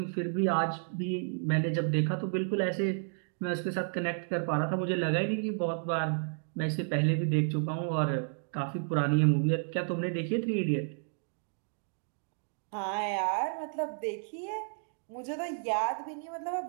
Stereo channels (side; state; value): left; silent; digital silence